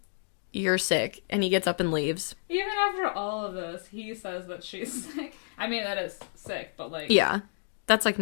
you're sick, and he gets up and leaves. Even after all of this, he says that she's sick. I mean, that is sick, but like, yeah, that's like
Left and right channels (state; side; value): silent; right; digital silence